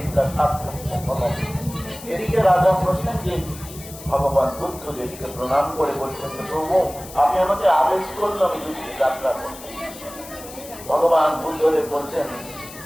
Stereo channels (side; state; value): left; noise; hiss, 15 dB below the sound